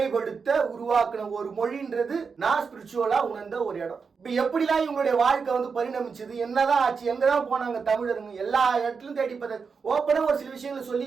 உருவாக்குன ஒரு மொழின்றது நான் ஸ்பிரிச்சுவலா உணர்ந்த ஒரு இடம். இப்ப எப்படிலாம் இவங்களுடைய வாழ்க்கை பரிணமிச்சது, என்னதான் ஆச்சு, எங்கதான் போனாங்க தமிழருங்க, எல்லா இடத்துலயும் தேடி பார்த்து ஓப்பனா ஒரு சில விஷயங்களை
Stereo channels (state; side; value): quieter; left; 5.4 dB